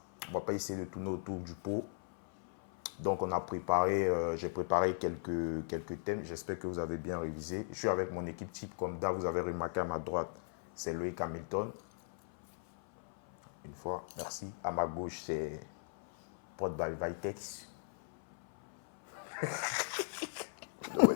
On ne va pas essayer de tourner autour du pot. Donc on a préparé, j'ai préparé quelques thèmes, j'espère que vous avez bien révisé. Je suis avec mon équipe type comme d'hab, vous avez remarqué à ma droite, c'est Loïc Hamilton. Une fois, merci. À ma gauche, c'est Podball Vitex.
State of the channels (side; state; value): right; silent; 53 dB below the other